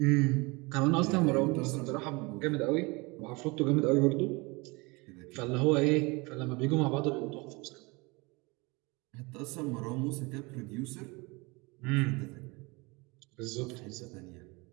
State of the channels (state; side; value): quieter; left; 26.2 dB